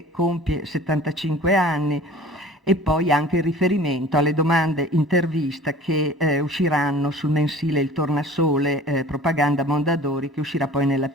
compie 75 anni. E poi anche il riferimento alle domande intervista che usciranno sul mensile Il Tornasole, propaganda Mondadori, che uscirà poi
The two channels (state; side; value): normal; both; correlation 0.45